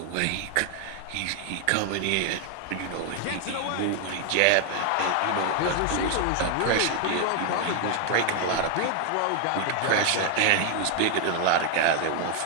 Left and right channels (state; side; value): different; both; correlation 0.00